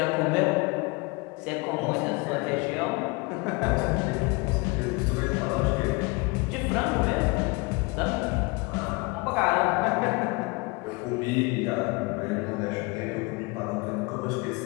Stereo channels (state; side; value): quieter; right; 27.6 dB